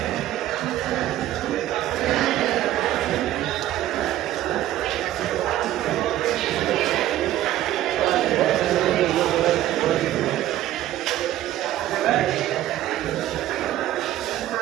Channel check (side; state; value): left; quieter; 13.6 dB